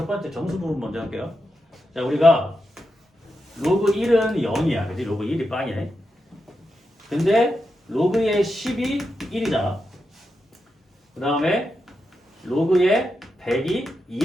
번째 정수 부분 먼저 할게요. 자, 우리가 로그 1은 0이야. 그지? 로그 1이 빵이네. 근데 로그의 10이 1이잖아. 그 다음에 로그의 100이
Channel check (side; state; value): both; normal; correlation 0.87